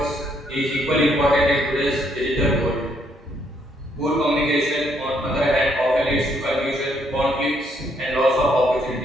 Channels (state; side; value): normal; both; correlation 0.71